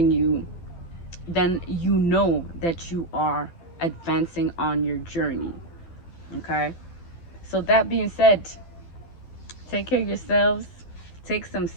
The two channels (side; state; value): right; late; 12 ms